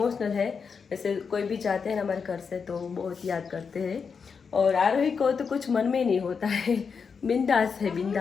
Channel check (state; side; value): quieter; right; 5.8 dB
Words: है, वैसे कोई भी जाते हैं ना हमारे घर से तो बहुत याद करते हैं। और आरोही को तो कुछ मन में नहीं होता है, बिंदास है,